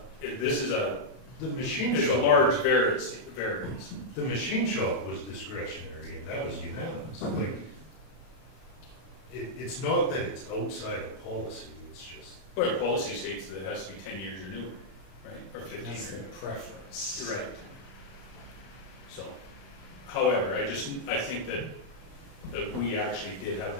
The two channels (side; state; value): right; late; 31 ms